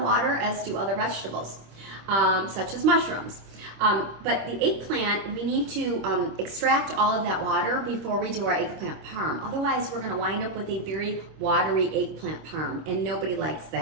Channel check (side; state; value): left; late; 26 ms